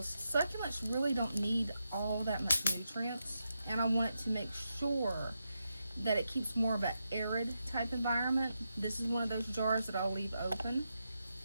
succulents really don't need all that much nutrients. And I want it to make sure that it keeps more of an arid type environment. This is one of those jars that I'll leave open.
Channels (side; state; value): both; inverted; correlation -0.86